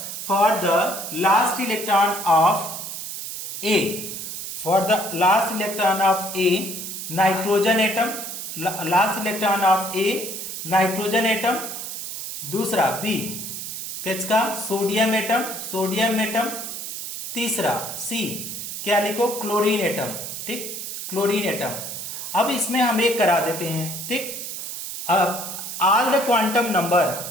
for the last electron of A, for the last electron of A nitrogen atom, last electron of A nitrogen atom, दूसरा B किसका सोडियम एटम, सोडियम एटम, तीसरा सी क्या लिखो क्लोरीन एटम, ठीक, क्लोरीन एटम। अब इसमें हम एक करा देते हैं, ठीक। अब all the quantum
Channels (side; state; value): right; noise; hiss, 7 dB below the sound